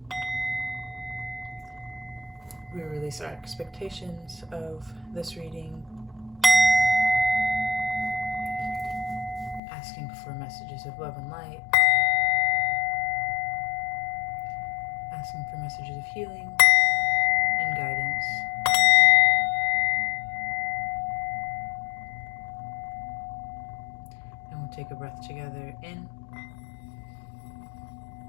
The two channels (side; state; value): right; drops out; at 9.6 s